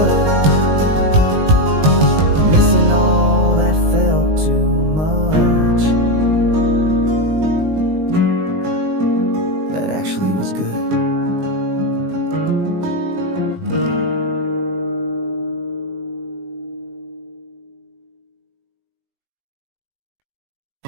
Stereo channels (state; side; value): late; left; 19 ms